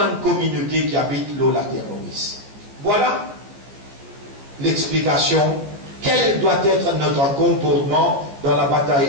communauté qui habite l'Olaterroris. Voilà l'explication. Quel doit être notre comportement dans la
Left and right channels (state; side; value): late; left; 15 ms